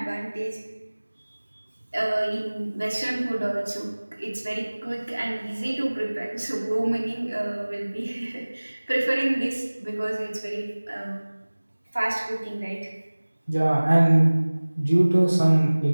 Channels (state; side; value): inverted; both; correlation -1.00